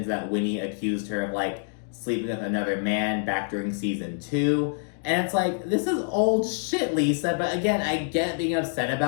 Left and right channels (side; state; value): right; silent; digital silence